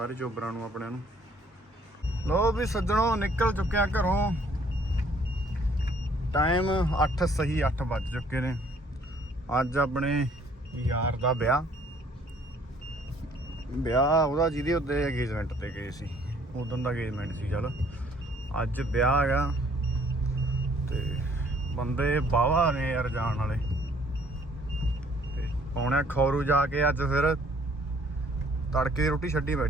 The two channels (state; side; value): normal; both; correlation 0.61